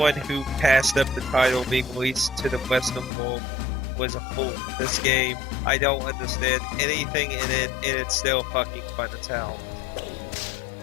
who passed up the title being released to the Western world was a fool. This game, I don't understand anything in it, and it's still fucking fun as hell.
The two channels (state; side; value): drops out; right; at 3.1 s